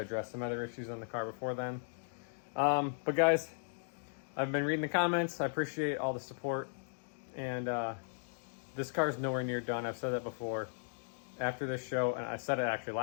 some other issues on the car before then. But guys, I've been reading the comments. I appreciate all the support. And this car is nowhere near done. I've said that before. After this show, and I said it actually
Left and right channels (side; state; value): right; silent; digital silence